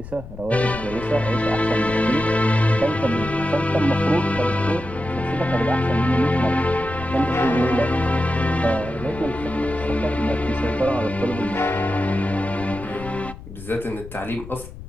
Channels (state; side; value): noise; left; rumble, 14 dB below the sound